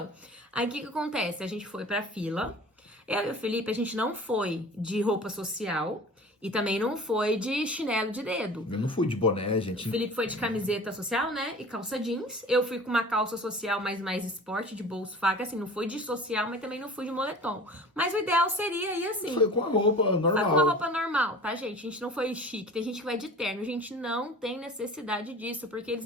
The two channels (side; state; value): both; normal; correlation 0.41